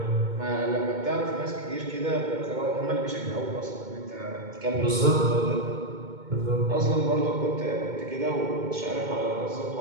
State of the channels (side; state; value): left; late; 2.2 ms